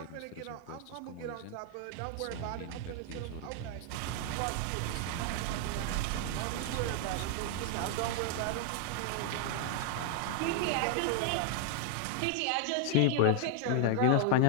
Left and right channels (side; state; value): both; different; correlation 0.00